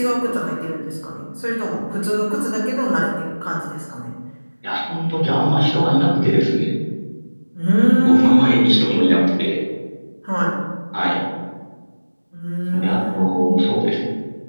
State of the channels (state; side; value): inverted; both; correlation -1.00